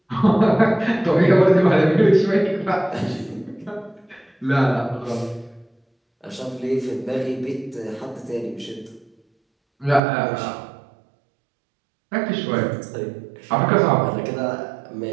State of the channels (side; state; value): left; drops out; at 10.0 s